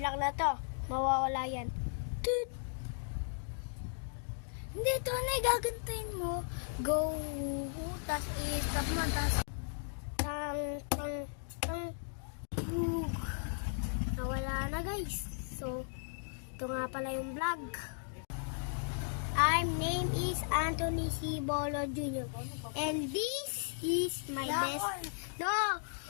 na to. Mawawala yan. Toot! Hindi, ito na gagantayin mo. Go! Tapos i-stop mo. Tapos tang. Bug! Nawala na guys. So, ito nga pala yung vlog. Name is Anthony C. Bolo Jr. And this is my best. No!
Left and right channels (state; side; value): silent; right; digital silence